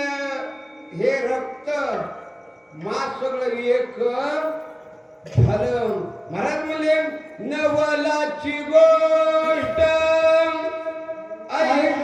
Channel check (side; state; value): both; identical; correlation 1.00